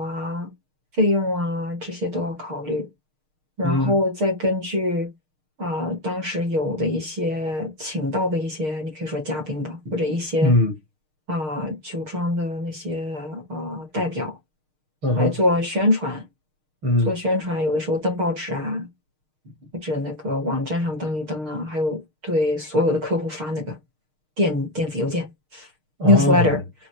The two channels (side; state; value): left; late; 6.5 ms